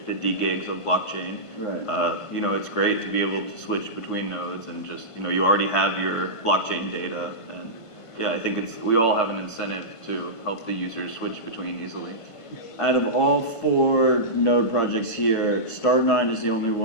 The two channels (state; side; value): late; right; 1.5 ms